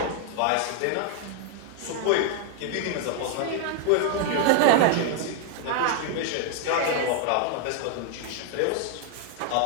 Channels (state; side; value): different; both; correlation 0.00